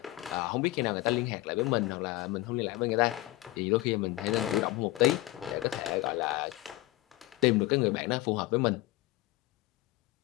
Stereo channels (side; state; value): right; quieter; 18.0 dB